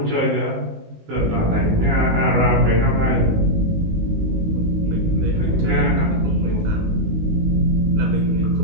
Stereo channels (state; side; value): late; left; 19 ms